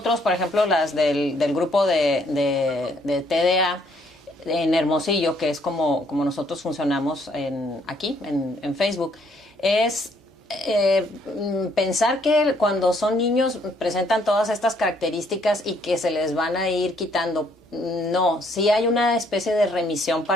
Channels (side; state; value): both; normal; correlation 0.67